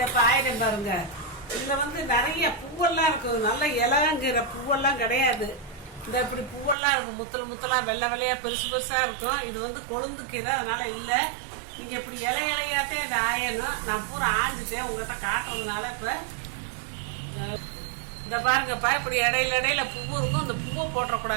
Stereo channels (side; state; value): left; drops out; at 6.8 s